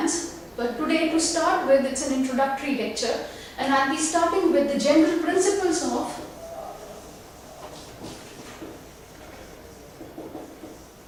but today to start with it's an introductory lecture and I'll be starting with the general principles of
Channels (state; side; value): identical; both; correlation 1.00